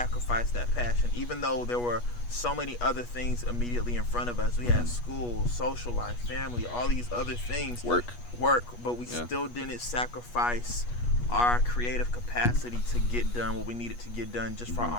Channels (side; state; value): right; late; 8.3 ms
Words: that passion, even though there were so many other things immediately in front of us. We had school, social life, family, all these other things. Work, but we still didn't sacrifice our creative capacity to get done what we needed to get done just for